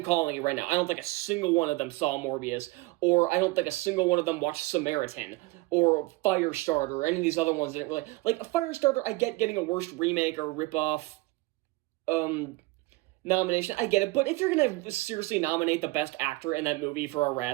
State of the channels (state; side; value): quieter; left; 21.6 dB